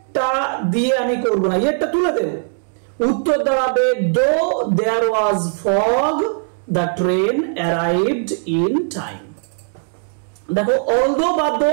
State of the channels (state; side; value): silent; left; digital silence